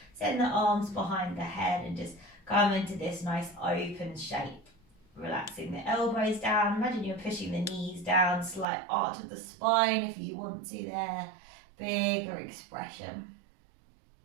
Send the arms behind the head and just come into this nice open shape. Relaxing the elbows down. Imagine you're pushing the knees down, slight arch of the spine if you want to there. Bigger expression.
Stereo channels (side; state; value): left; drops out; at 8.7 s